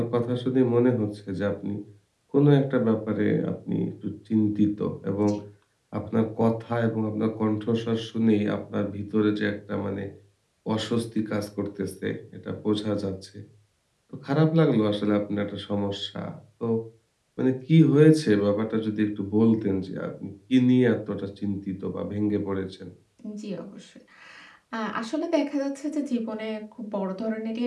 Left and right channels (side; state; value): both; identical; correlation 1.00